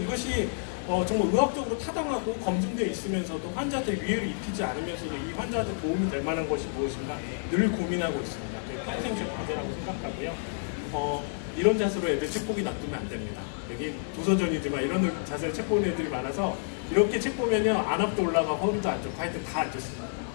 정말 의학적으로 타당하고 검증되어 있으면서도 환자한테 위해를 입히지 않으면서도 이 환자한테 도움이 될 만한 것이 무엇인가 늘 고민하고 있습니다. 평생 제 과제라고 생각하고요. 이런 자세로 애들 책 보기 놔두면 안 됩니다. 여기 도서전이지만 이런 자세로 책 보는 애들이 많아서 이렇게 책 보면요 안압도 올라가고 허리도 안 좋고 하여튼 다 안 좋습니다.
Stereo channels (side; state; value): right; silent; digital silence